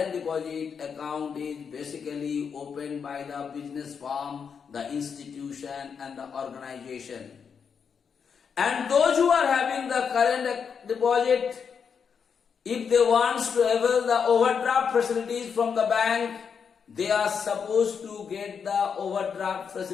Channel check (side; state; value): right; quieter; 6.6 dB